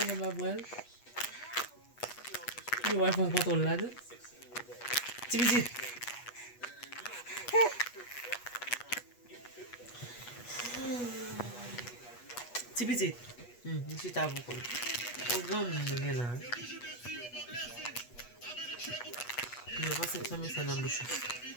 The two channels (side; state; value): right; late; 8.3 ms